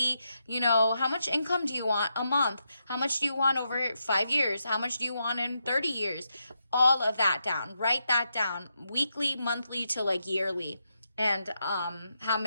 How much income do you want a month? How much do you want over 5 years? How much do you want in 30 years? All of that down. Write that down, weekly, monthly to like yearly. And how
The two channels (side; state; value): both; inverted; correlation -0.84